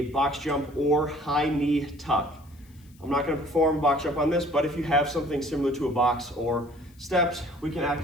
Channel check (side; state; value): left; noise; hiss, 30 dB below the sound